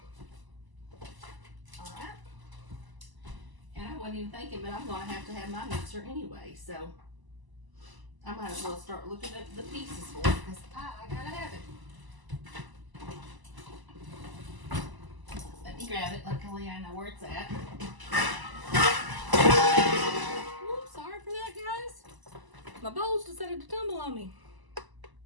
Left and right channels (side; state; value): left; late; 1.0 ms